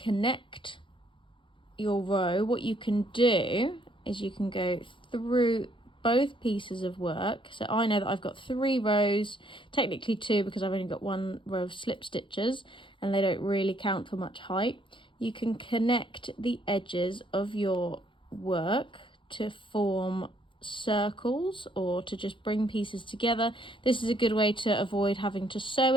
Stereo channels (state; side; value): late; right; 0.24 ms